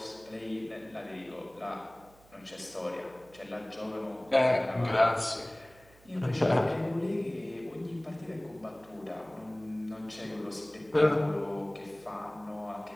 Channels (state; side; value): noise; right; hum, 26 dB below the sound